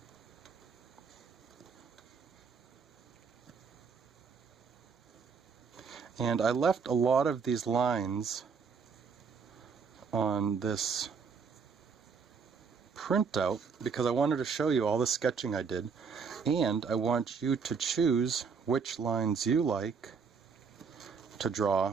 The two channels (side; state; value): left; quieter; 5.6 dB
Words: And I left a lot of these lines on this printout because I wanted to show you all the sketching I did, and I want you to choose which lines you like to